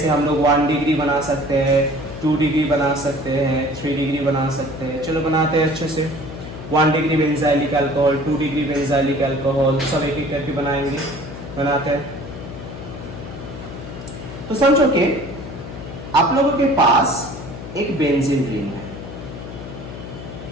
हम लोग 1 डिग्री बना सकते हैं, 2 डिग्री बना सकते हैं, 3 डिग्री बना सकते हैं। चलो बनाते हैं अच्छे से। 1 degree benzylic alcohol, 2 degree benzylic alcohol, सब एक एक करके बनाएंगे, बनाते हैं। तो समझो कि आप लोगों के पास एक बेंजीन रिंग है,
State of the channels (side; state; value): left; noise; hum, 11 dB below the sound